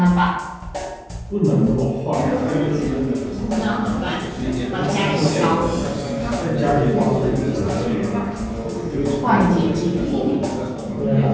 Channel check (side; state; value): both; identical; correlation 1.00